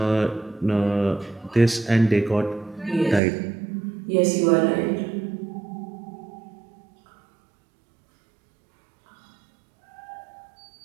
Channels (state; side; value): drops out; left; at 3.2 s